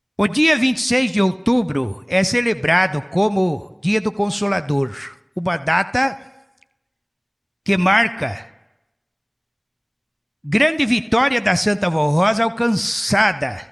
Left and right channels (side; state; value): both; identical; correlation 1.00